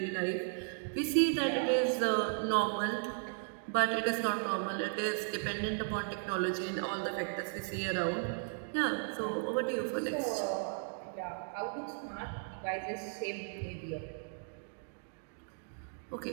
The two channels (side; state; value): left; silent; digital silence